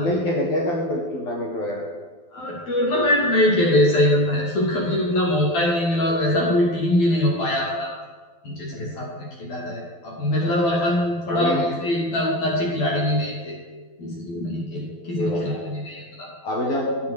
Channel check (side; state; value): right; late; 12 ms